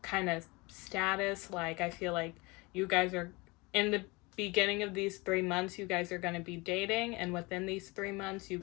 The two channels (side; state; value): right; quieter; 25.2 dB